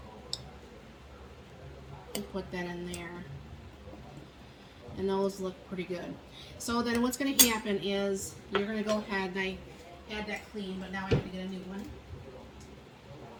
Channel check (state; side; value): identical; both; correlation 1.00